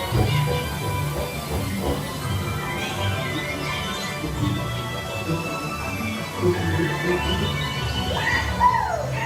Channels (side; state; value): both; identical; correlation 1.00